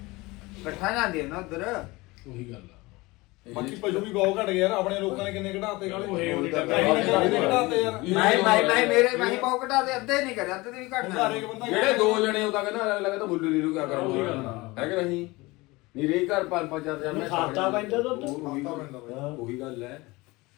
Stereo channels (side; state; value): right; quieter; 22.4 dB